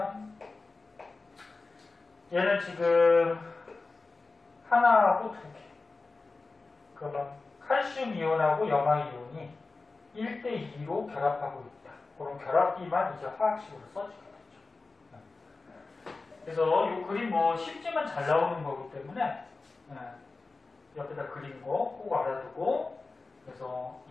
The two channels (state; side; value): quieter; right; 3.7 dB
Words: 얘는 지금 하나하고 두 개. 그러면 칼슘 이온하고 염화이온이 1대2로 결합하고 있다. 그런 결합비만 이제 화학식으로 써주게 되죠. 그래서 이 그림 뭐 쉽지만 잘 나오는 거기 때문에 옆에다 그린 거 꼭 알아두고, 그래서